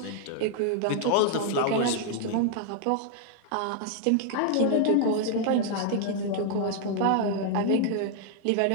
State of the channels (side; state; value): both; different; correlation 0.00